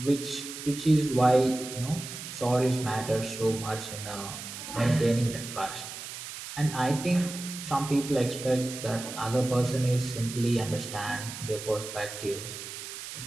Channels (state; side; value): noise; right; hiss, 10 dB below the sound